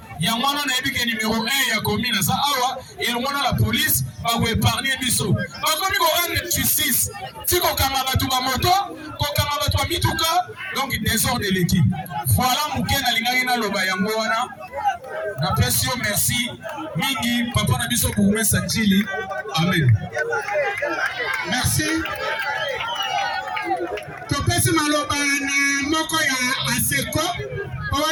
yango wana nayebi ke numéro 1 ya commune ça awa elongona la police ba épargner biso bakomi ko rendre justice ti kokanga bato ba moto kokanga bato ba mituka donc désordre de l'équipe voilà muke na lingaki na loba yango wana na pression merci mingi papa na biso bourgmestre Njili amen merci topesi maloba na moko ya aseko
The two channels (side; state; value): both; identical; correlation 1.00